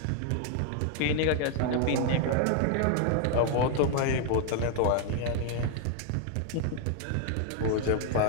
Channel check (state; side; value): different; both; correlation 0.00